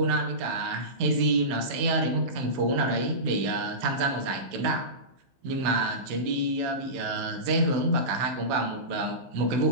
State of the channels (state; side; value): late; left; 16 ms